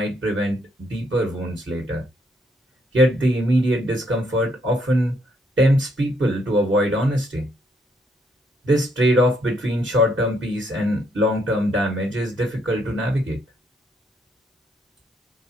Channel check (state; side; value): normal; both; correlation 0.72